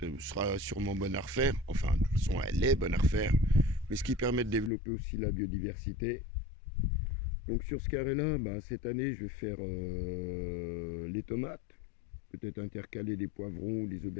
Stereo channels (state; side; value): drops out; right; at 4.7 s